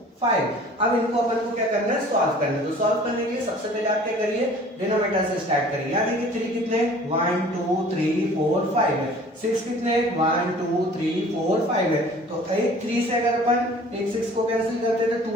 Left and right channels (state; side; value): normal; both; correlation 0.49